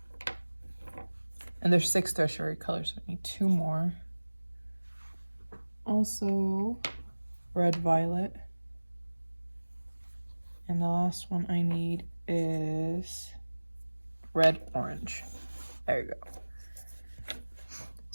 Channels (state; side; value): inverted; both; correlation -1.00